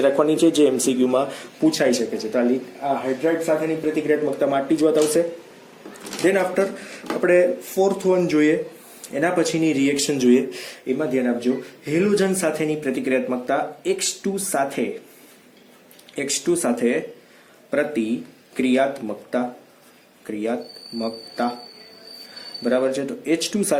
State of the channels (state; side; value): identical; both; correlation 1.00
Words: રાખવાની છે, જે MCQમાં પૂછાઈ શકે છે. તો આ હાઇડ્રાઇડ સાથેની પ્રતિક્રિયાત્મકતામાં આટલી જ વાત આવશે. ધેન આફ્ટર આપણે 4th વન જોઈએ, એના પછીની રિએક્શન જોઈએ. એમાં ધ્યાન આપજો, હેલોજન સાથેની પ્રતિક્રિયાત્મકતા. X2 સાથે પ્રતિક્રિયાત્મકતા. બરાબર છે, તો H2